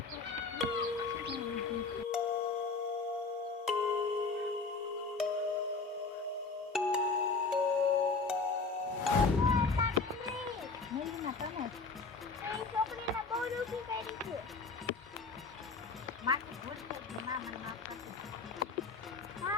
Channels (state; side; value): quieter; right; 4.2 dB